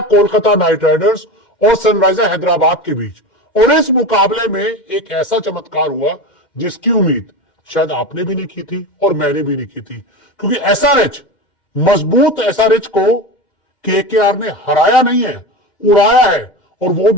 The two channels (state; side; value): late; right; 2.1 ms